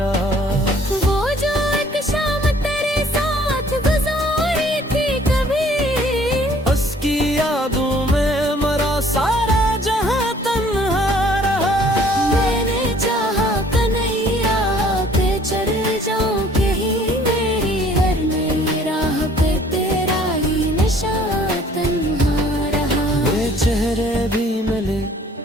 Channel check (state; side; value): normal; both; correlation 0.57